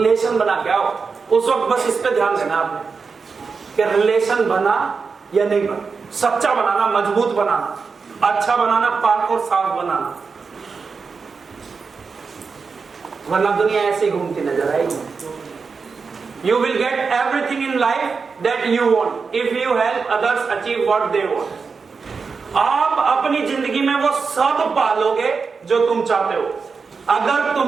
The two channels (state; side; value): quieter; left; 5.1 dB